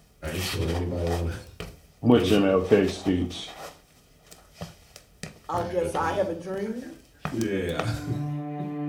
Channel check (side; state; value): both; identical; correlation 1.00